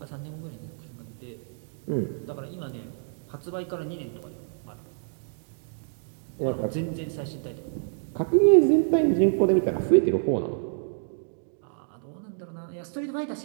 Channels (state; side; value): silent; left; digital silence